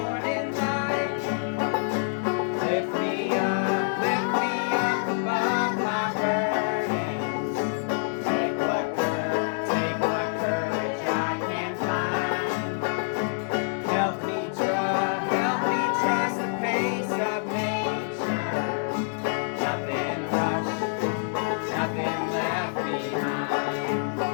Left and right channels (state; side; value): silent; right; digital silence